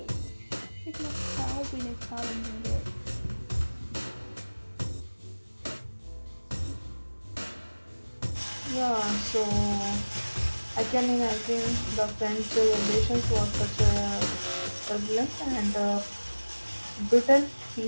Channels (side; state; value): both; inverted; correlation -1.00